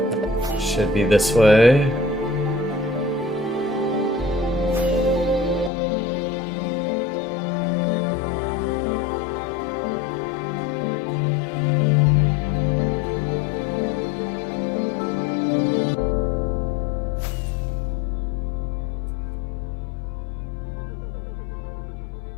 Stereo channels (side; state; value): right; drops out; at 5.7 s